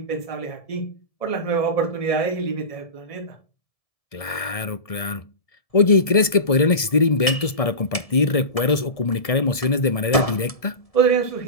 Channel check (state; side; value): late; right; 1.7 ms